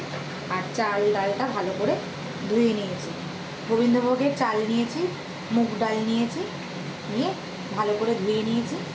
আর চাল ডালটা ভালো করে ধুয়ে নিয়েছি। গোবিন্দভোগের চাল নিয়েছি, মুগ ডাল নিয়েছি, নিয়ে ভালো করে ধুয়ে নিয়েছি।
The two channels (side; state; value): both; identical; correlation 1.00